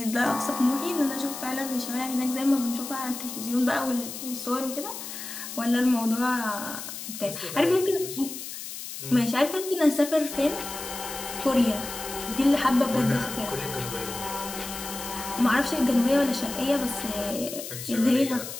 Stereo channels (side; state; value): left; noise; hiss, 9 dB below the sound